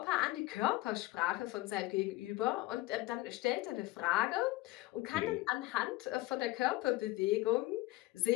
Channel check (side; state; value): right; quieter; 18.7 dB